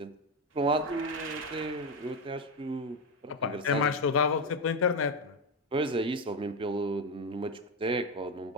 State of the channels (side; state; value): both; normal; correlation 0.12